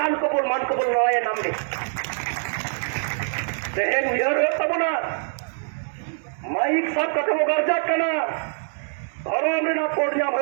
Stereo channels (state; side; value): silent; left; digital silence